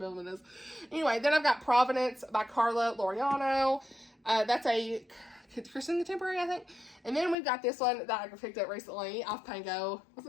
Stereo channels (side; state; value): right; drops out; at 7.4 s